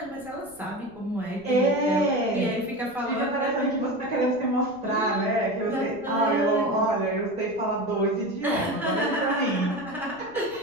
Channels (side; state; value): right; noise; rumble, 27 dB below the sound